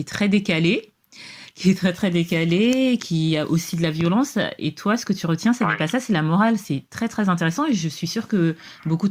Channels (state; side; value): identical; both; correlation 1.00